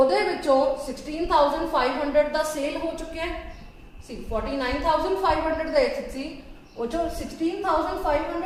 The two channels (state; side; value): identical; both; correlation 1.00